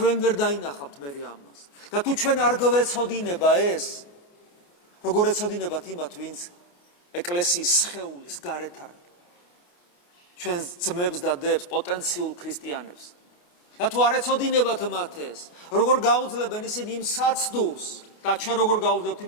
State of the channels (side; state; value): right; late; 28 ms